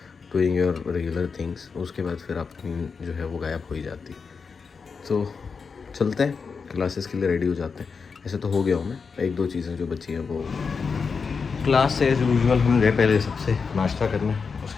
doing your regular things. उसके बाद फिर आपकी नींद जो है वो गायब हो ही जाती। तो चलते हैं, क्लासेस के लिए रेडी हो जाते हैं। ऐसे तो हो गया हूँ मैं, एक दो चीज़ें जो बची हैं वो क्लास से एज यूजुअल हम गए पहले सबसे नाश्ता करने।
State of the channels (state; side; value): quieter; right; 5.3 dB